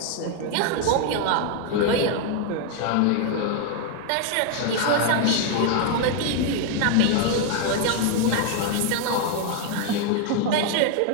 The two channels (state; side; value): different; both; correlation 0.01